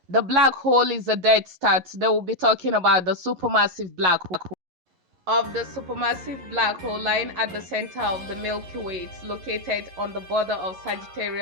The black hole is a dead star. Today we'll be talking about the supermassive black hole. Of the supermassive black hole lying at the center of the Milky Way, it's located on the border of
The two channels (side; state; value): left; late; 11 ms